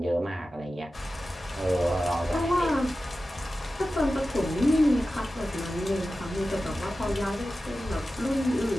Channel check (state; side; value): normal; both; correlation 0.94